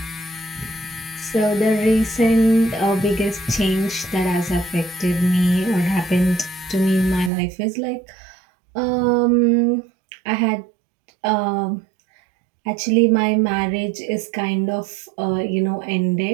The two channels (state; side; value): drops out; left; at 7.3 s